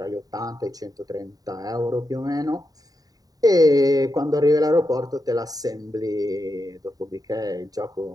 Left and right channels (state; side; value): late; left; 0.18 ms